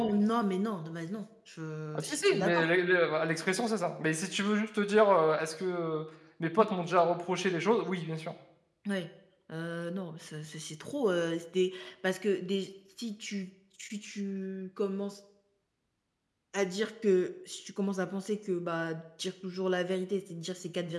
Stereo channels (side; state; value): both; identical; correlation 1.00